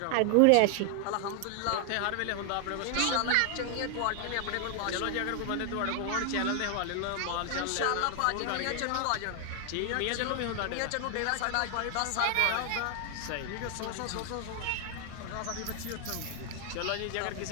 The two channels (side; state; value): both; different; correlation 0.00